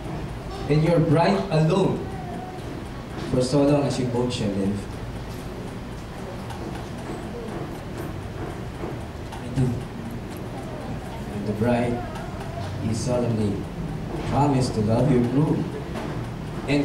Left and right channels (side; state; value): both; identical; correlation 1.00